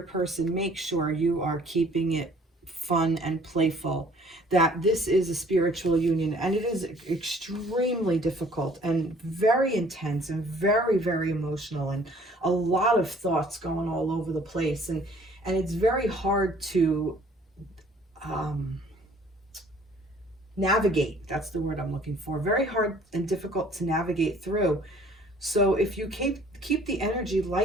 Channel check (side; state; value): both; normal; correlation 0.56